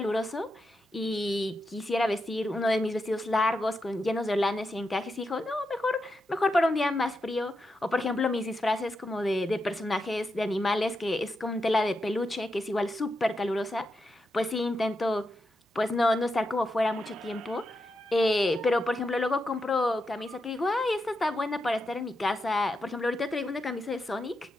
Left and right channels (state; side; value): normal; both; correlation 0.86